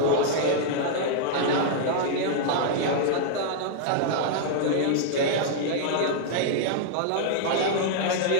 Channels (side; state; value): both; different; correlation -0.01